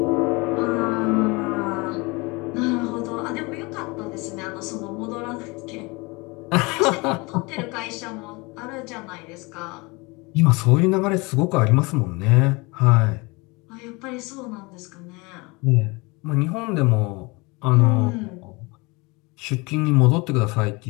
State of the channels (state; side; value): quieter; right; 26.1 dB